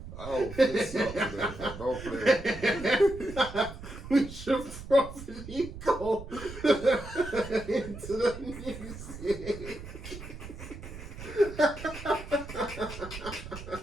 I'll fist you up today. Don't play. We should probably go into the music.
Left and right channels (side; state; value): right; noise; rumble, 12 dB below the sound